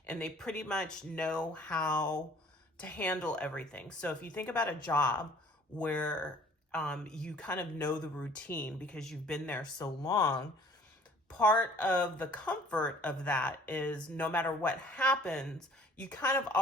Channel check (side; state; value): both; normal; correlation 0.53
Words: and they pretty much know how to handle everything. So if you think about a job where you kind of know the routine because you've been there so long, part of the comfort of that is no matter what happens, you kind of